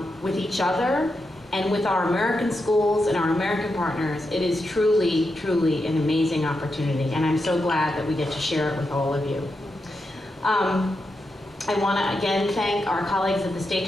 with each other and with our American schools and our American partners, it is truly, truly an amazing opportunity, and I'm so glad that we get to share it with all of you. I want to again thank our colleagues at the State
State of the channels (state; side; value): normal; both; correlation 0.86